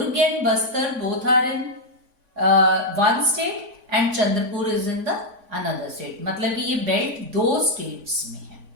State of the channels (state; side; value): late; left; 3.6 ms